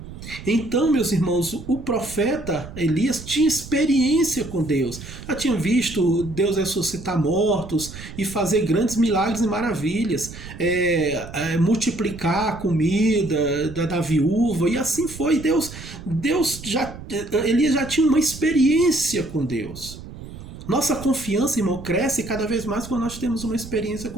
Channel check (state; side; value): noise; right; rumble, 13 dB below the sound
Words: Então, meus irmãos, o profeta Elias tinha experiência com Deus. Já tinha visto Deus ressuscitar mortos e fazer grandes milagres e maravilhas, multiplicar a comida da viúva, e assim foi. Elias já tinha uma experiência com Deus. Nossa confiança, irmão, cresce cada vez mais quando nós temos uma experiência